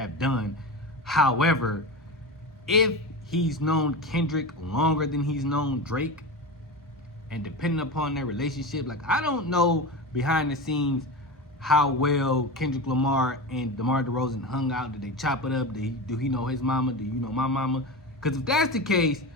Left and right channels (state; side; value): normal; both; correlation 0.24